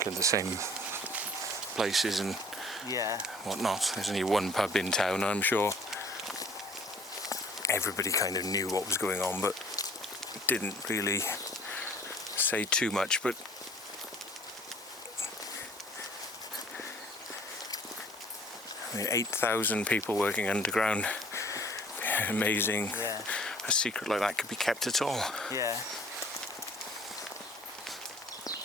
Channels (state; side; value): normal; both; correlation 0.53